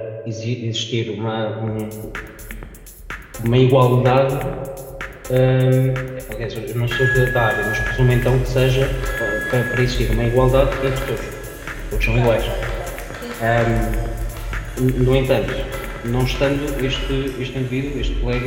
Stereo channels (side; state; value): both; identical; correlation 1.00